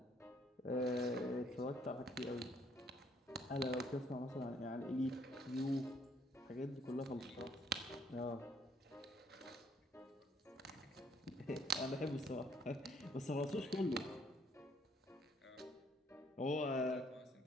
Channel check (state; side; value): normal; both; correlation 0.65